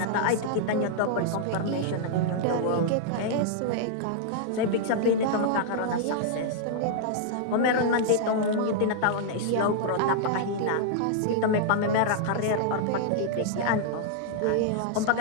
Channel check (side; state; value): both; different; correlation -0.01